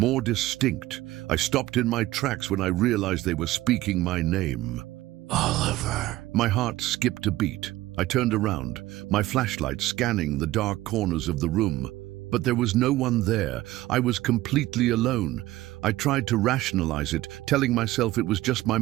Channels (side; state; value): left; quieter; 16.7 dB